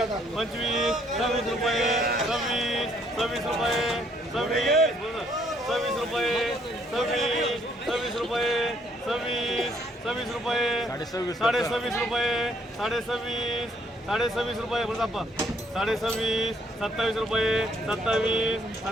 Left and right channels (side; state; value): both; normal; correlation 0.67